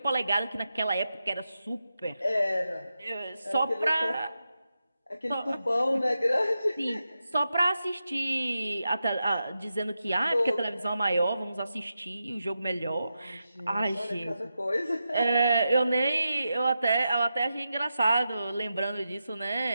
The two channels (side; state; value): both; inverted; correlation -0.89